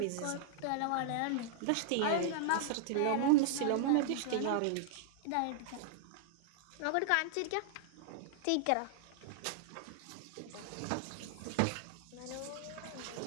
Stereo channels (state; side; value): different; both; correlation -0.01